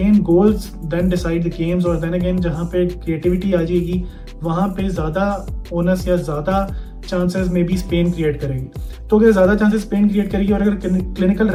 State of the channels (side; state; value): both; identical; correlation 1.00